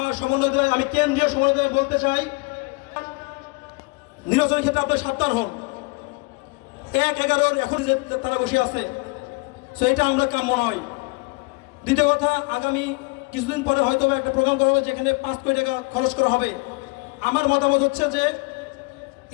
সমন্বয়, আমি কেন্দ্রীয় সমন্বয় বলতে চাই, নির্বাচনের ক্ষেত্রে আপনার সাবধান হন। 1-11 এখন যে তারা বসে আছে, সো এটা আমরা কাম্য নয়। দ্বিতীয় কথা, আগামী কিছুদিন পরে হয়তো একটা প্রোগ্রাম করা হবে যেখানে 5 কোটি টাকা খরচ করা হবে। আমার মতামত হচ্ছে যে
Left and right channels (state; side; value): quieter; right; 27.8 dB